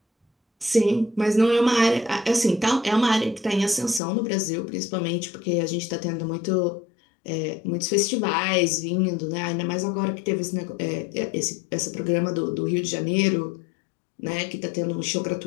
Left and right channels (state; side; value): drops out; right; at 4.0 s